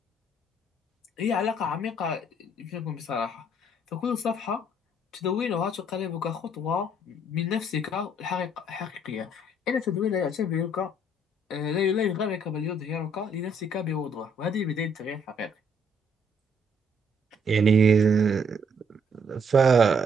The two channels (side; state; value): both; normal; correlation 0.66